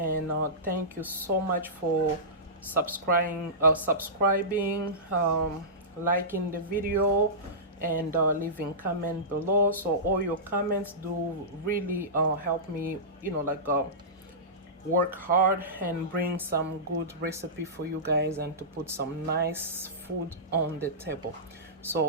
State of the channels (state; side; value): normal; both; correlation -0.18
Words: thank you so much for subscribing, liking the video, and leaving comment below. So all your comments do really help me, you know, like work hard and bring some good recipe for you guys, and to put some nice food on the table.